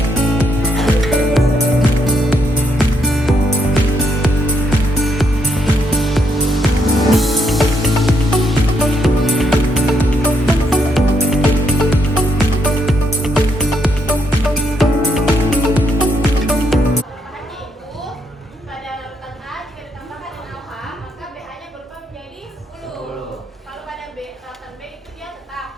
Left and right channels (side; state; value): both; normal; correlation 0.76